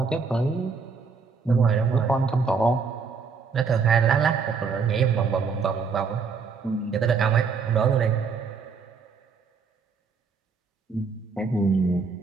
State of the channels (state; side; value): quieter; left; 5.2 dB